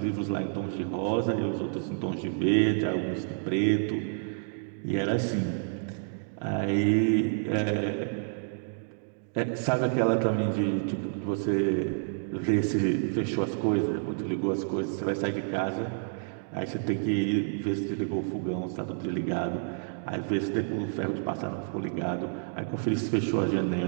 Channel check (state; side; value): silent; left; digital silence